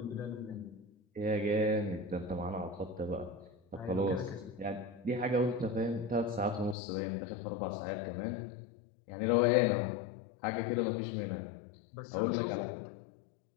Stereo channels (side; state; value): right; drops out; at 6.8 s